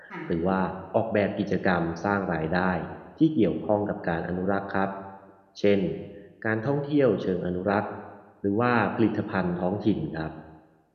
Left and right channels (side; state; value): both; identical; correlation 1.00